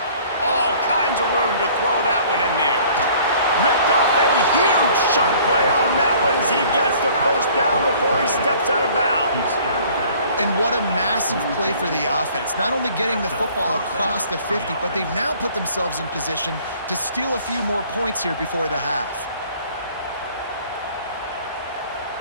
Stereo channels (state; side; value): inverted; both; correlation -0.53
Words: All kinds of room to throw that one in there. Ripped off a huge chunk play on that one as he gets the first down before he steps out of bounds. And what a massive play for the offense. Not only getting the football across the 50, but they've now put themselves in position to steal a few more points here before the half.